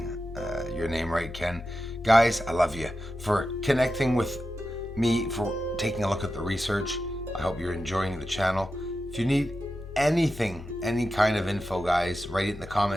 your name right, Ken. Guys, I love you for connecting with me, for taking a look at the research. I hope you're enjoying the channel. If you need anything, any kind of info, guys, write it in the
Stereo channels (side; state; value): both; normal; correlation 0.91